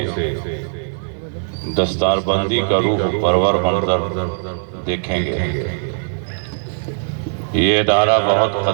دستار بندی کا روح پرور منظر دیکھیں گے۔ یہ ادارہ بہت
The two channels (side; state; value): left; silent; digital silence